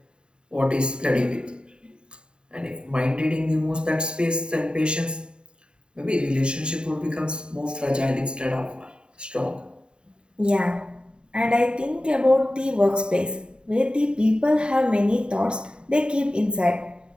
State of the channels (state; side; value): late; left; 0.050 ms